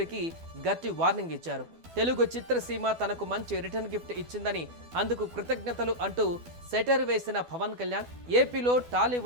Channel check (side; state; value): left; late; 12 ms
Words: గట్టి వార్నింగ్ ఇచ్చారు. తెలుగు చిత్రసీమ తనకు మంచి రిటర్న్ గిఫ్ట్ ఇచ్చిందని, అందుకు కృతజ్ఞతలు అంటూ సెటర్ వేసిన పవన్ కళ్యాణ్ ఏపీలో